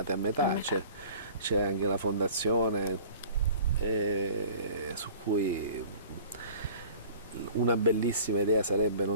a metà, c'è anche la fondazione su cui una bellissima idea sarebbe,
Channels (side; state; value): both; inverted; correlation -0.46